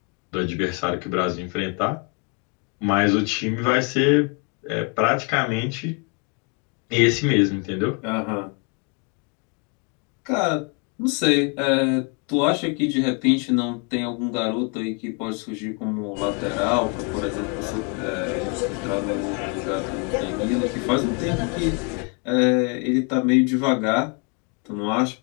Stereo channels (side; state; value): right; quieter; 35.5 dB